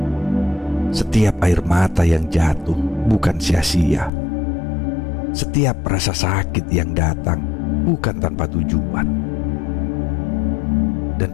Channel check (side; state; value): right; drops out; at 4.1 s